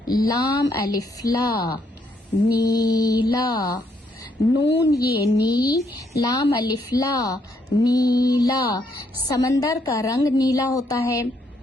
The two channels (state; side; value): normal; both; correlation 0.73